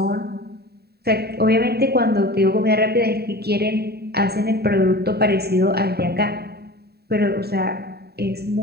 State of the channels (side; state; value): left; late; 0.47 ms